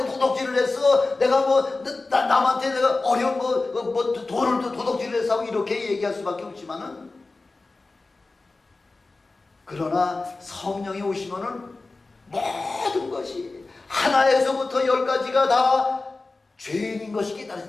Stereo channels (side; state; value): right; quieter; 3.5 dB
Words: 했어. 내가 남한테 내가 어려운 돈을 도둑질을 했어 하고 이렇게 얘기할 수밖에 없지만은, 그러나 성령이 오시면은 모든 것이 하나에서부터 10가지가 다 죄인인 것이